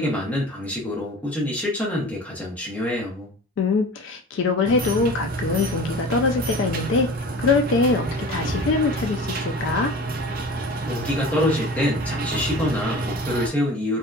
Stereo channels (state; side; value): normal; both; correlation 0.38